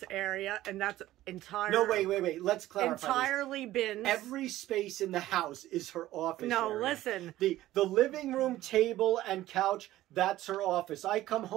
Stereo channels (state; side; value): quieter; left; 15.1 dB